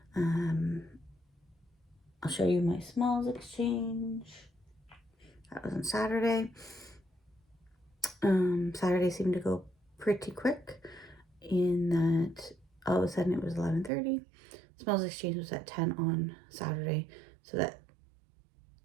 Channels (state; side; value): drops out; left; at 13.9 s